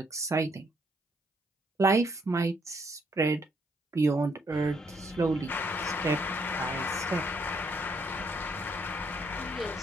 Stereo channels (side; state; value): both; normal; correlation 0.71